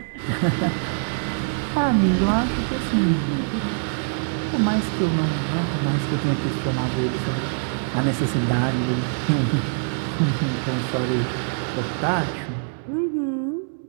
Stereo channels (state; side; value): silent; left; digital silence